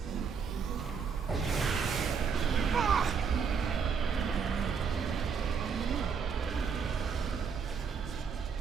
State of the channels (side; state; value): left; quieter; 6.1 dB